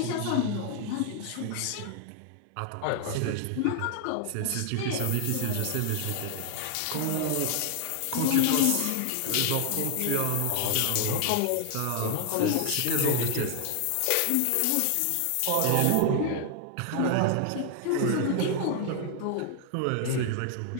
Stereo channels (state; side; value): different; both; correlation 0.00